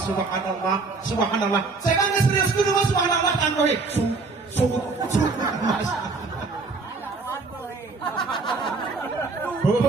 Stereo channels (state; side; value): quieter; left; 4.0 dB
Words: subhanallah, subhanallah. Saya kan serius kudu subhanallah kan rohi.